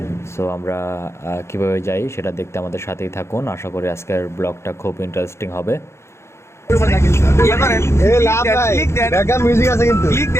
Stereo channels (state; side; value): late; right; 0.13 ms